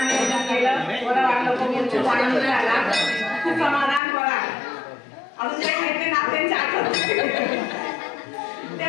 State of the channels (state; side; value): drops out; right; at 4.0 s